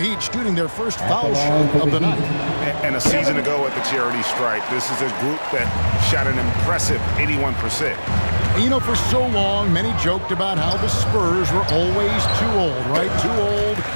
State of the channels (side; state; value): both; inverted; correlation -1.00